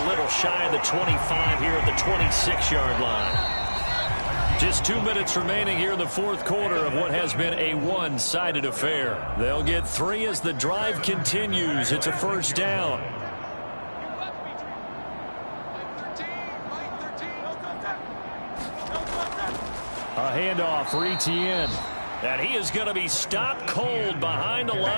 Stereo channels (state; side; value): inverted; both; correlation -1.00